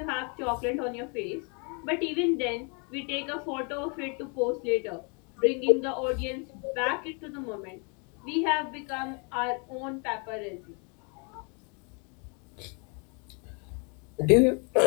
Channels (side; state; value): right; quieter; 35.8 dB